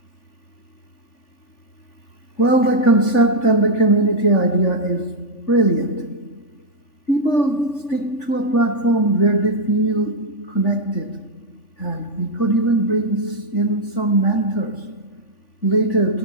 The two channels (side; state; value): right; late; 3.5 ms